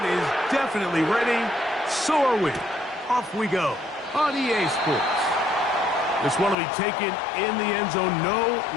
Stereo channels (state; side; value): drops out; right; at 6.6 s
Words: is definitely ready. So are we. Off we go on EA Sports. This one will be taken in the end zone. No